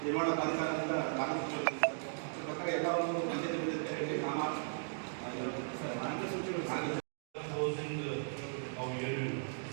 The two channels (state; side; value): silent; left; digital silence